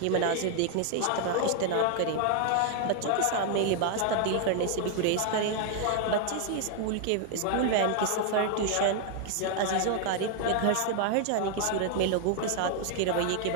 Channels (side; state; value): both; different; correlation 0.00